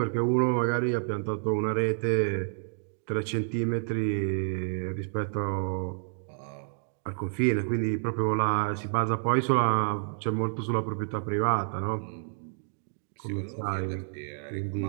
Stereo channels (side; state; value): left; silent; digital silence